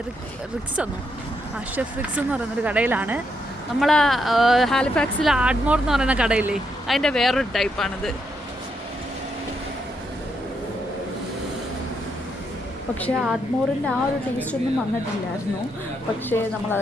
ഷെഫ് റിക്സ് എന്ന് പറയുന്നൊരു കടയിലാണ്. നമ്മൾ ഹാലിഫാക്സിൽ ആഡ്മോർ എന്ന് പറയുന്ന കടയില്ലേ, അതിൻ്റെ വേറൊരു ടൈപ്പാണിത്. പക്ഷേ ആഡ്മോറിൻ്റെ ആ ഒരു ടേസ്റ്റ് ഒന്നും വന്നിട്ടില്ലായിരുന്നു. പക്ഷേ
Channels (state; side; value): normal; both; correlation 0.78